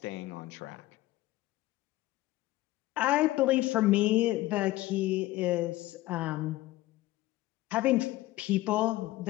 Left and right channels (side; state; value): right; quieter; 17.4 dB